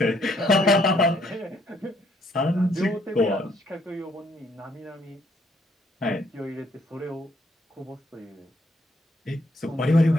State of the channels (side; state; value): both; normal; correlation 0.69